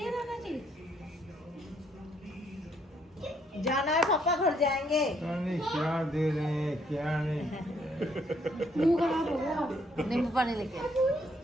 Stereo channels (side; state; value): both; normal; correlation 0.69